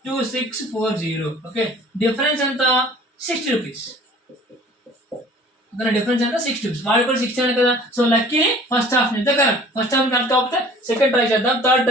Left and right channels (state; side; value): normal; both; correlation 0.48